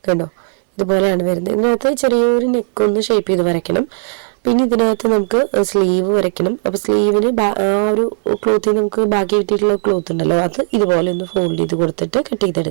കണ്ടോ, ഇതുപോലെയാണ് വരുന്നത്. ഇതിനകത്ത് ചെറിയൊരു നെക്കൊന്ന് ഷേപ്പ് ചെയ്ത് വരയ്ക്കണം. പിന്നെ ഇതിനകത്ത് നമുക്ക് സ്ലീവ് വരയ്ക്കണം. അപ്പോൾ സ്ലീവിന് ആ ഒരു ക്ലോത്തിൽ നമുക്ക് ബാക്കി കിട്ടിയിട്ടുള്ള ക്ലോത്ത് ഉണ്ടല്ലോ, അത് ഇതുപോലെ ഒന്ന് ഫോൾഡ് ചെയ്ത് കൊടുത്തിട്ട് കട്ട്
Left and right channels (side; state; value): left; silent; 65 dB below the other